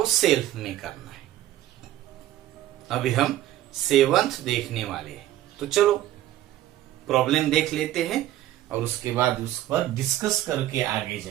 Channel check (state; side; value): quieter; left; 13.7 dB